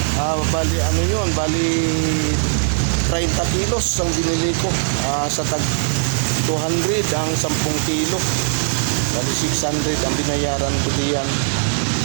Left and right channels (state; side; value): silent; left; digital silence